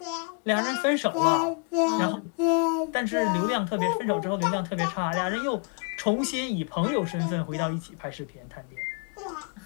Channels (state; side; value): quieter; right; 38.1 dB